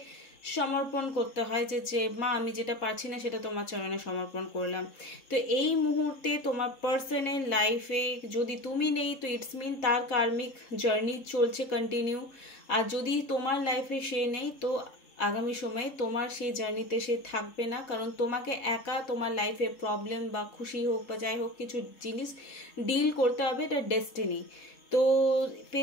সমর্পণ করতে হয়, যে মা আমি যেটা পারছি না সেটা তোমার চরণে সমর্পণ করলাম। তো এই মুহূর্তে তোমার পার্সনের লাইফে যদি তুমি নেই তো ইটস মিন তার কার্মিক জার্নি চলছে কন্টিনিউ, আর যদি তোমার লাইফে সে নেই তো আগামী সময়ে তোমার সেই জার্নিতে সে থাকবে না, কারণ তোমাকে একা তোমার লাইফে প্রবলেম বা খুশি হোক বা যাই হোক কিছু জিনিস ডিল করতে হবে, এটা ডেস্টিনি। তো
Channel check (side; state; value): right; late; 3.7 ms